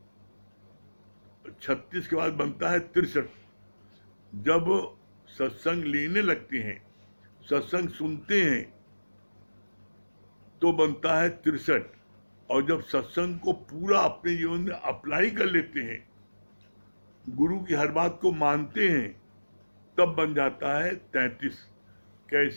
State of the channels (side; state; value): both; inverted; correlation -1.00